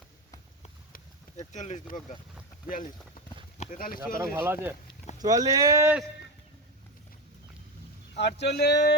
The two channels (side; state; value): both; normal; correlation 0.17